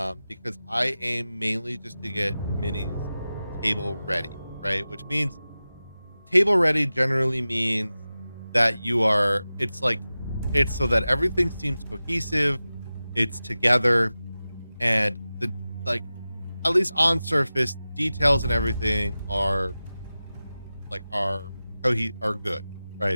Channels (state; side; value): inverted; both; correlation -0.95